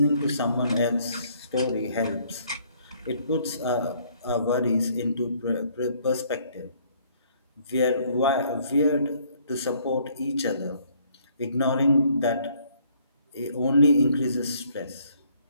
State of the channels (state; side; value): inverted; both; correlation -0.64